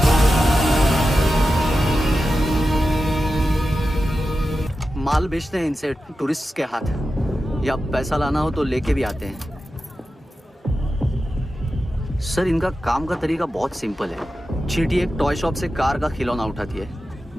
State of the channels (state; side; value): normal; both; correlation 0.92